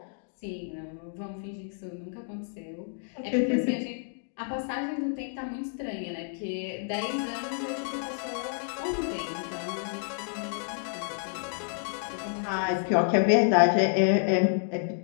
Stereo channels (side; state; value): right; silent; digital silence